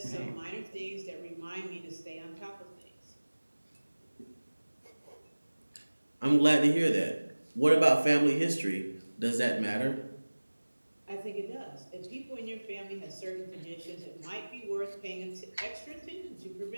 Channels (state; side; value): inverted; both; correlation -1.00